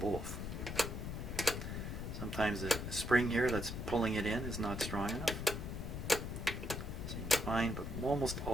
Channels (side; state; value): left; noise; rumble, 5 dB below the sound